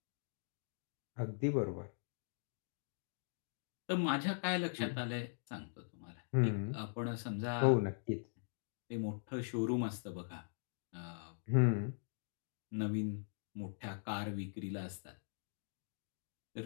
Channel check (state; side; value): silent; right; digital silence